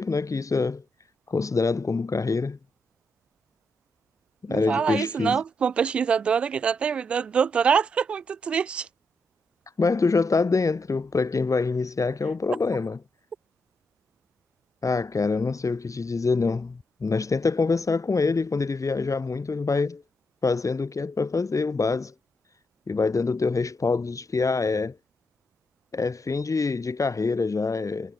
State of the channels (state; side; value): normal; both; correlation 0.81